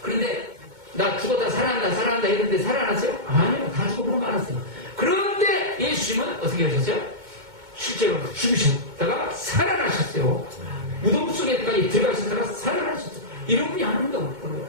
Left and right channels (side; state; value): left; late; 2.2 ms